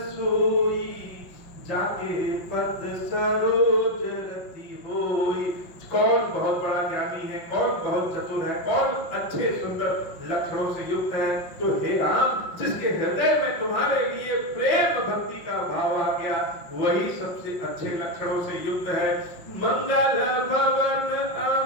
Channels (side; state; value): right; late; 5.7 ms